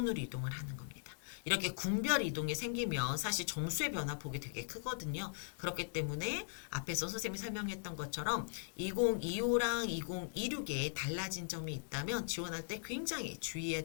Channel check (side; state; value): right; silent; digital silence